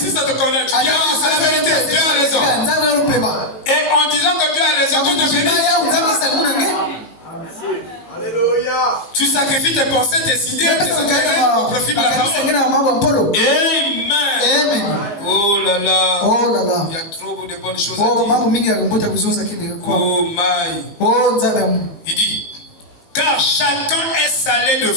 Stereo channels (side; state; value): right; late; 19 ms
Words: ça te connaît, tu dis ah, c'est la vérité, Dieu a raison. Et en disant que Dieu a raison, tu te bénis. Alléluia. Tu sacrifies tes pensées, tes idées, tes intérêts au profit de la parole. Amen. Oh là là. Il y a trop de bonnes choses à dire. Oh my. Il dit, car chacun est salé de